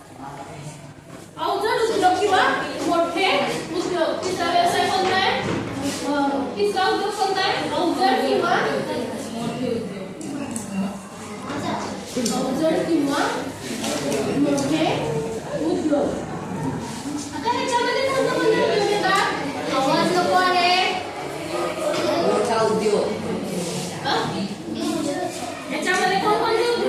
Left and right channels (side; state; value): both; identical; correlation 1.00